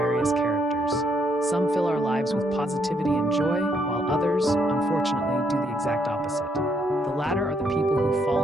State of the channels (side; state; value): both; normal; correlation 0.73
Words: characters. Some fill our lives with positivity and joy, while others, unfortunately, do the exact opposite. The latter are the people who